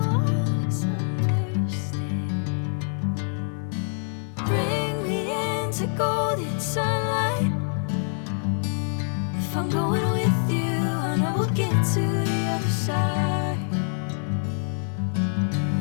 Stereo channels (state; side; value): silent; right; 61 dB below the other